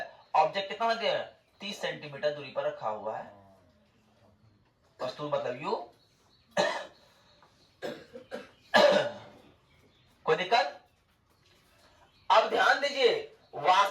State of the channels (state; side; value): identical; both; correlation 1.00